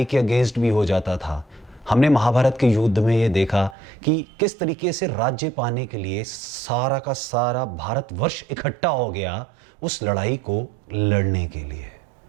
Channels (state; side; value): drops out; left; at 3.8 s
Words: के अगेंस्ट भी हो जाता था। हमने महाभारत के युद्ध में ये देखा कि किस तरीके से राज्य पाने के लिए सारा का सारा भारतवर्ष इकट्ठा हो गया उस लड़ाई को लड़ने के लिए।